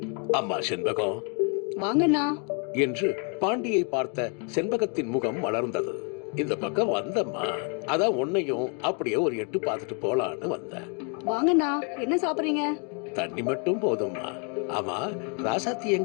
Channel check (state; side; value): quieter; right; 37.9 dB